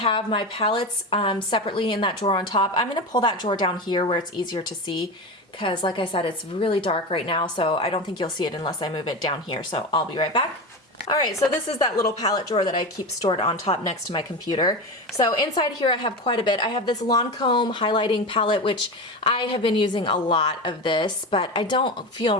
my palettes separately in that drawer on top. I'm going to pull that drawer down here where it's easier to see, because like I said, it's really dark right now, so I don't think you'll see it unless I move it down here. So I'll be right back. All right, so this is that little palette drawer that I keep stored on top next to my computer. So inside here I have quite a bit. I have this Lancome highlighting palette, which I have been using a lot of this, but I don't feel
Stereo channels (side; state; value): both; normal; correlation 0.23